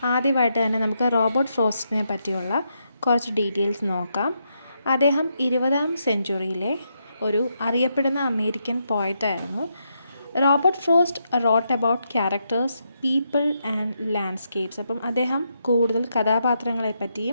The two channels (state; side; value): inverted; both; correlation -0.81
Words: ആദ്യമായിട്ട് തന്നെ നമുക്ക് റോബർട്ട് ഫ്രോസ്റ്റിനെ പറ്റിയുള്ള കുറച്ച് ഡീറ്റെയിൽസ് നോക്കാം. അദ്ദേഹം 20ാം സെഞ്ച്വറിയിലെ ഒരു അറിയപ്പെടുന്ന അമേരിക്കൻ പോയറ്റായിരുന്നു. Robert Frost wrote about characters, people and landscapes. അപ്പം അദ്ദേഹം കൂടുതൽ കഥാപാത്രങ്ങളെ